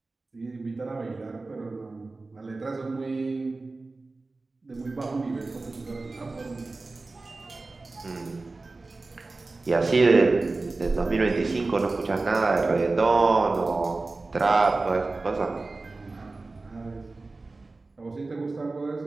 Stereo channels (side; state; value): left; quieter; 3.5 dB